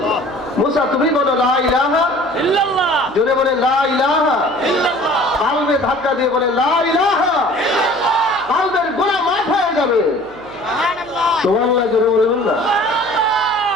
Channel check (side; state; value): right; noise; hum, 26 dB below the sound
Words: মুসা তুমি বলো লা ইলাহা ইল্লাল্লাহ, জোরে বলে লা ইলাহা ইল্লাল্লাহ, কালবে ধাক্কা দিয়ে বলে লা ইলাহা ইল্লাল্লাহ, কালবের গুনাহ মাফ হয়ে যাবে। সুবহানাল্লাহ, সুবহানাল্লাহ, জোরে বলবেন না?